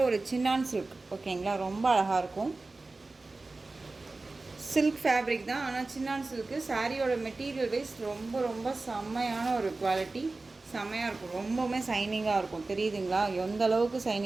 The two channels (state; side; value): quieter; left; 3.4 dB